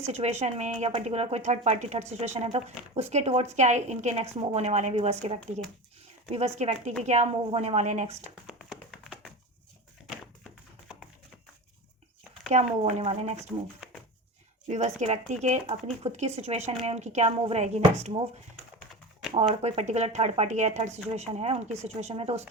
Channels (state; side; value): normal; both; correlation 0.27